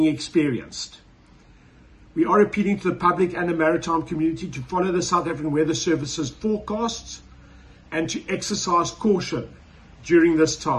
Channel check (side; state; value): both; identical; correlation 1.00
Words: experienced. We are appealing to the public and the maritime community to follow the South African Weather Services forecasts and to exercise caution during this